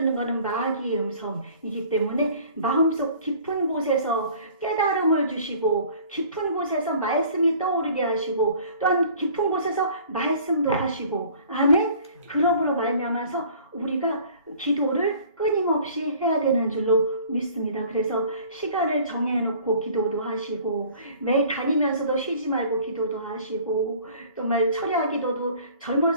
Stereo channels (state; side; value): inverted; both; correlation -0.50